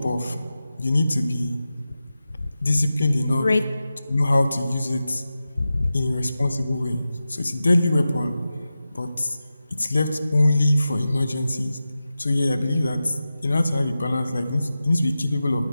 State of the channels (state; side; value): inverted; both; correlation -0.93